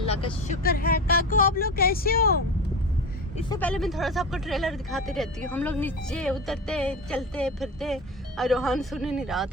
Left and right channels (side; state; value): both; normal; correlation 0.26